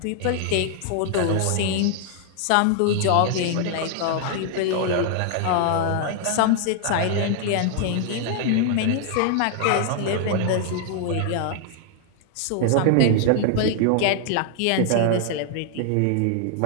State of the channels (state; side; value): different; both; correlation 0.00